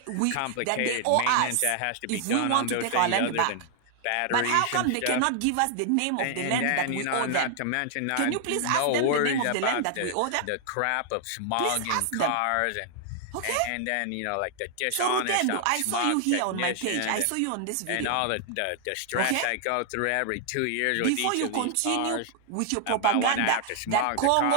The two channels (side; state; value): both; different; correlation 0.00